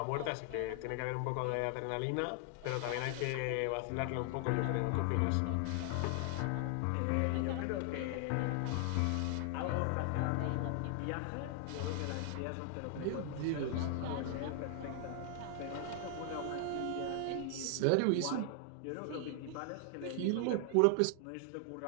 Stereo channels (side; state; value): both; different; correlation 0.00